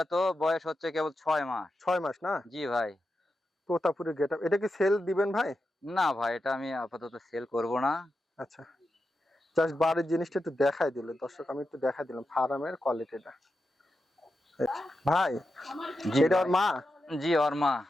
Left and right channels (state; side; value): normal; both; correlation 0.89